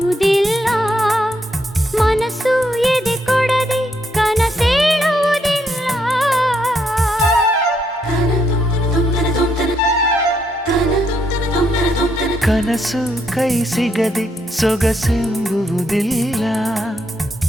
ಮನಸ್ಸು ಎದೆ ಕೊಡದೆ ಕನಸೇಳುವುದಿಲ್ಲ. ಕನಸು ಕೈ ಸಿಗದೆ ಸೊಗಸೆಂಬುವುದಿಲ್ಲ,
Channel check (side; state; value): both; normal; correlation 0.76